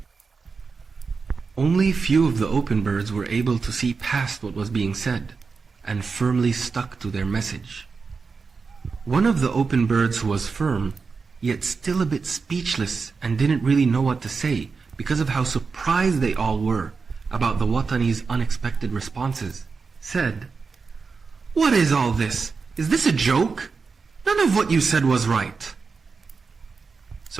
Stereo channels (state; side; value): quieter; left; 4.8 dB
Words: Only few of the open birds were able to see past what was being said and firmly stuck to their message. One of the open birds who was firm, yet still a bit speechless and didn't really know what to say because of how surprised they all were about the Watani's unexpected responses, said, "What is all this? Is this a joke? None of what you said was right."